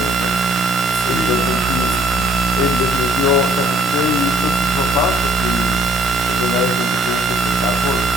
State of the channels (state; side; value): normal; both; correlation 0.61